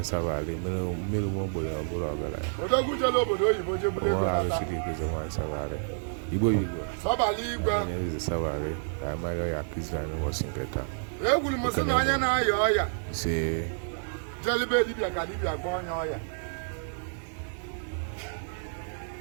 sabale mmiri mo gbo ya bụrụ ọgara ya. Odogu jelo obodo oyibo jebule ko ala siri ko wine sabale. Igbo Sabali igwe. Eze sabale. Ka ma ya kizana mo sinketa. Egwuru m sị na onye na-aya ọya si jelibe dibịa ka dibịa gwa onye ọya.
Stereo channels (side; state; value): left; silent; digital silence